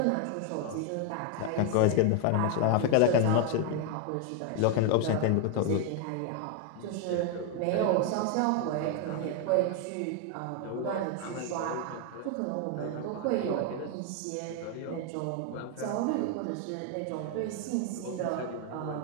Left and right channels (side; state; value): both; different; correlation 0.01